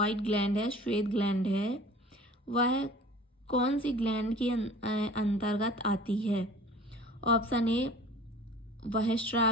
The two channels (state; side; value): normal; both; correlation 0.45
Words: ग्लैंड है, श्वेत ग्लैंड है, वह कौन सी ग्लैंड के अंतर्गत आती है? ऑप्शन ए